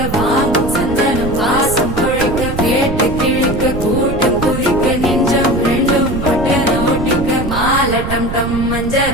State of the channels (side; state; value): right; noise; rumble, 6 dB below the sound